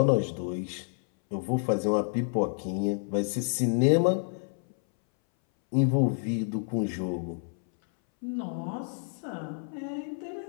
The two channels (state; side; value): silent; right; 59 dB below the other